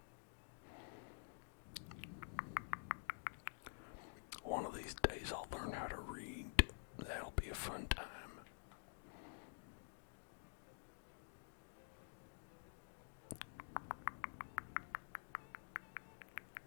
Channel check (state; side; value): silent; right; digital silence